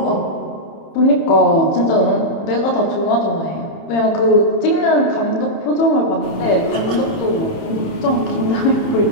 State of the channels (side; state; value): right; late; 30 ms